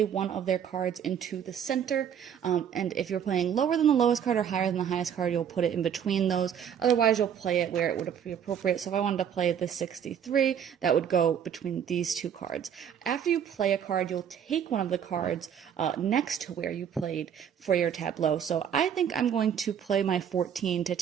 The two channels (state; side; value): quieter; left; 8.6 dB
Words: one of their cards into the center, and if you're playing lower than the lowest card or higher than the highest card, you'll put it in between those. Otherwise, you'll play it where it would be appropriate. So if I wanted to play the 63, that would go between these 2 cards. After you play a card, you'll take one of the cards next to where you played for your tableau. So I think I'm going to play my 14 to